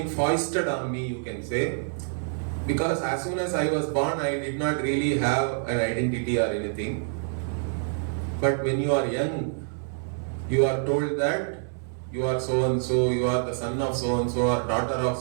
foisted on me, you can say, because as soon as I was born, I did not really have an identity or anything. But when you are young, you are told that you are so and so, you are the son of so and so, or daughter of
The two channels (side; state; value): left; silent; 60 dB below the other